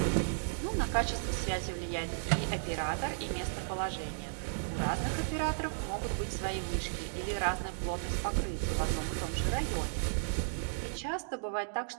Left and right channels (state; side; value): silent; left; digital silence